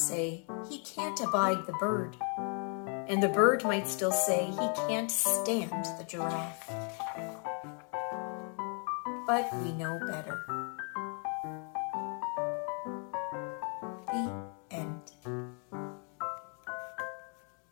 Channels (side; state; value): right; quieter; 39.7 dB